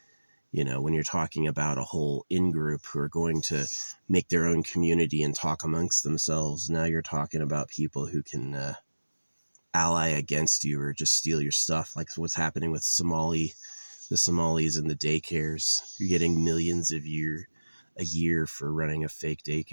You know, when you're talking about a whole in-group who are going to make their own community and talk amongst themselves, now you're talking about people who can ally against you or just steal your stuff, like what's happening with the Somalis and the daycares. You're getting millions a year for running a fake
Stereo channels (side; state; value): both; inverted; correlation -1.00